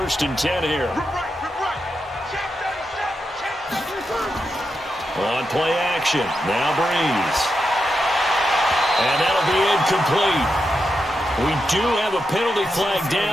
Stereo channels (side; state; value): both; normal; correlation 0.86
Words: and 10 here. On play action, now Breeze. And that'll be incomplete. We do have a penalty flag